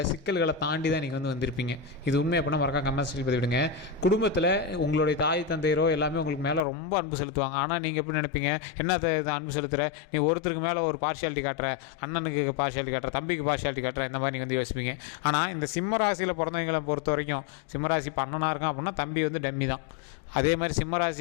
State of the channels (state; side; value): drops out; right; at 6.7 s